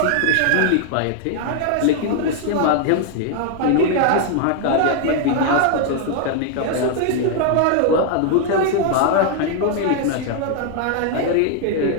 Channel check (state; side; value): different; both; correlation 0.00